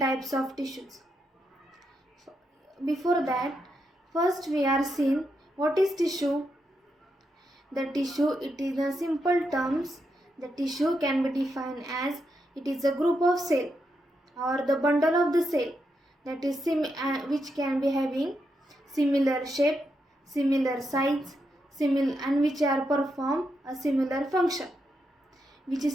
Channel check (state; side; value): normal; both; correlation 0.83